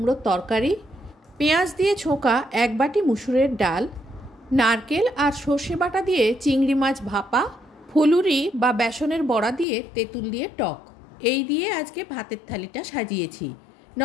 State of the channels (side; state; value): right; drops out; at 9.7 s